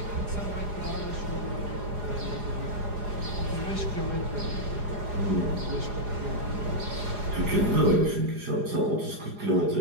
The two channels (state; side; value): late; left; 4.9 ms